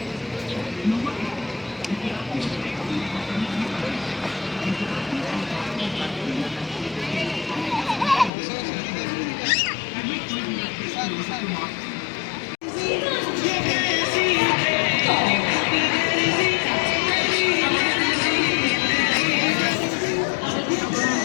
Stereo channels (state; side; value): drops out; right; at 8.3 s